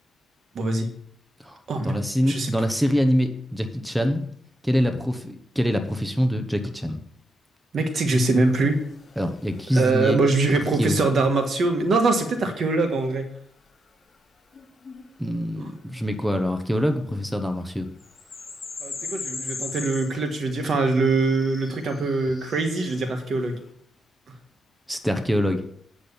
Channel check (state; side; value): normal; both; correlation 0.82